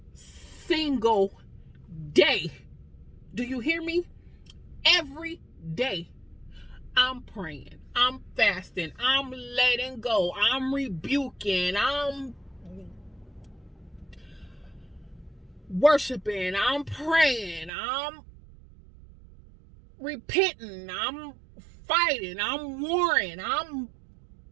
single day. Do you hear me? Every day. I'm praying, I'm fasting, I'm letting go, I'm rebuking, I'm worshiping, I'm praying, I'm repenting, I'm fighting, I'm warring, I'm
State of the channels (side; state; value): left; drops out; at 17.7 s